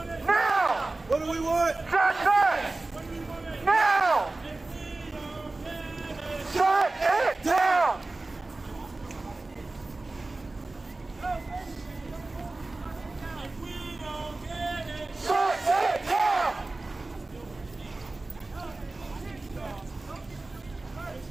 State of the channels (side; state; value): left; quieter; 3.1 dB